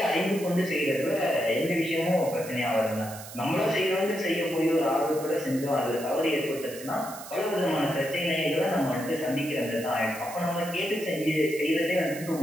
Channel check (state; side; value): noise; right; hiss, 14 dB below the sound